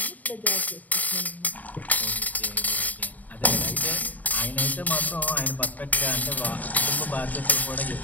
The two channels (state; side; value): late; right; 0.077 ms